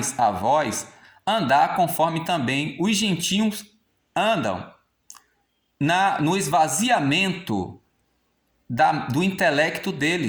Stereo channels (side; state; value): both; identical; correlation 1.00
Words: a vós, andar conforme também os gentios andam, no esvaziamento do intelecto